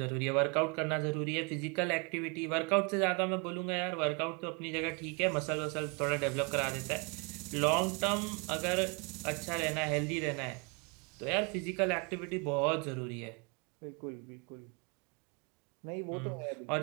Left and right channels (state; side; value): quieter; left; 33.4 dB